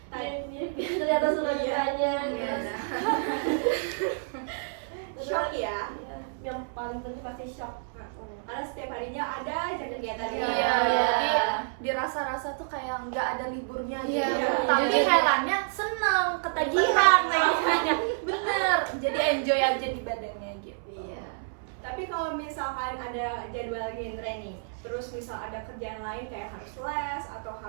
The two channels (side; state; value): left; silent; 59 dB below the other